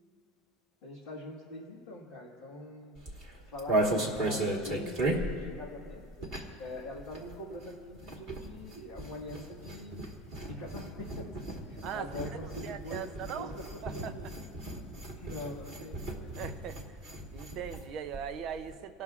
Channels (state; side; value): normal; both; correlation 0.30